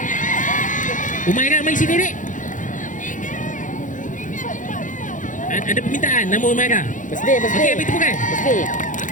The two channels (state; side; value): late; right; 0.37 ms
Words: Umairah mari sini dek. Ada permintaan nama Umairah. Birthday. Okey, beri tepukan.